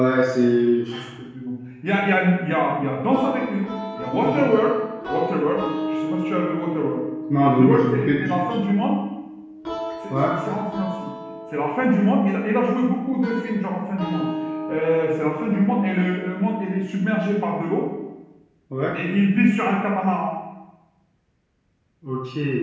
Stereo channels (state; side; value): identical; both; correlation 1.00